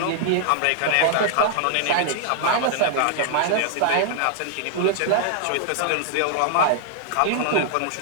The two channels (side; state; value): both; different; correlation -0.01